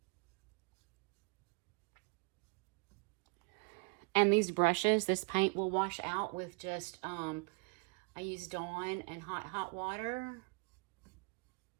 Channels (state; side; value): quieter; left; 33.3 dB